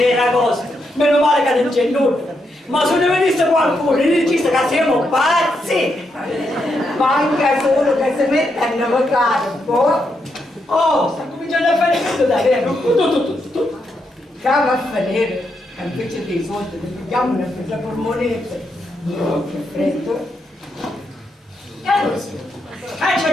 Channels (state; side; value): normal; both; correlation 0.81